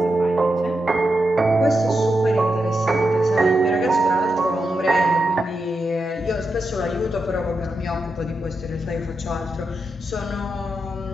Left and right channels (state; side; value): normal; both; correlation 0.87